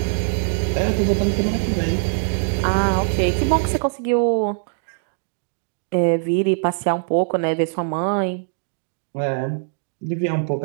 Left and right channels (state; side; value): silent; left; digital silence